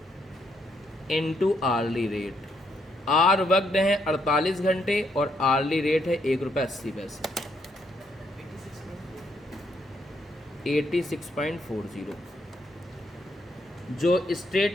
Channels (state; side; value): normal; both; correlation 0.74